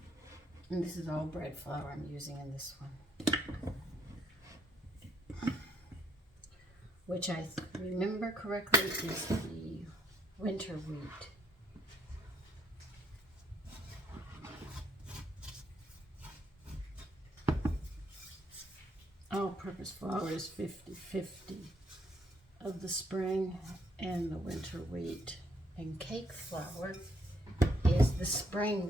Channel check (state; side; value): normal; both; correlation 0.69